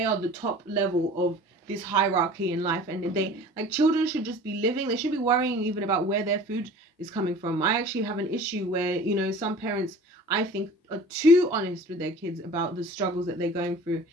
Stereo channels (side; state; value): both; normal; correlation 0.43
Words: are the top level of this hierarchy in life, and they, like, children should just be living. They should be worrying even about where their food is coming from. I actually have an issue where, you know, some parents, I think, are too honest with their kids about the struggles that they're going through